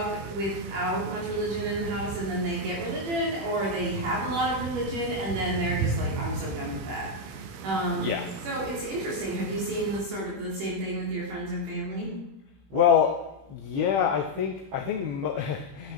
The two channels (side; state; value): left; late; 21 ms